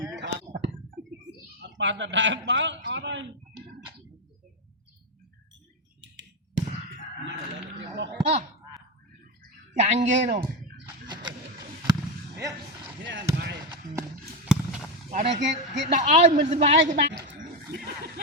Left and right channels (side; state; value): both; normal; correlation 0.10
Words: bạn là đại báo ở đây chẳng ghê đâu ở đây cái đỏ ơi mình sẽ bay cái bạn